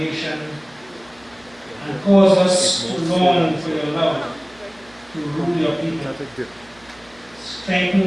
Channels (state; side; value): noise; right; hum, 28 dB below the sound